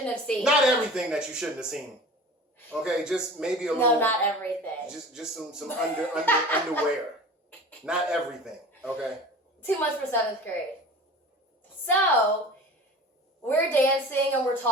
have seen. not everything that you shouldn't have seen. Okay, just maybe a little. No, not everything. Just some underwear. Not everything. Okay. Too much for 7th grade. So, we're dancing and we're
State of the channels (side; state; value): both; normal; correlation 0.39